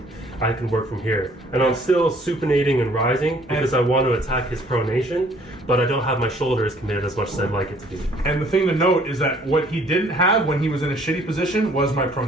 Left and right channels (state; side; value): normal; both; correlation 0.59